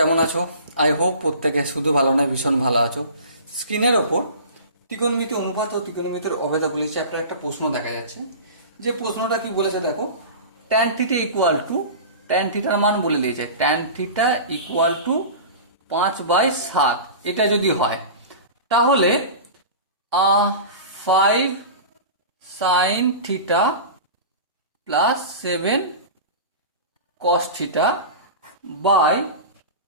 আছো? I hope প্রত্যেকে শুধু ভালো নয়, ভীষণ ভালো আছো। স্ক্রিনের ওপর ত্রিকোণমিতি অনুপাত ও ত্রিকোণমিতির অভেদাবলী চ্যাপ্টার একটা প্রশ্ন দেখা যাচ্ছে। যে প্রশ্নটা কি বলেছে দেখো, tan theta equal two, tan থিটার মান বলে দিয়েছে, ট্যান থিটা ইকুয়াল টু 5/7। এটা যদি হয় তাহলে 5 sine theta plus 7 cos theta by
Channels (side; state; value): both; inverted; correlation -0.34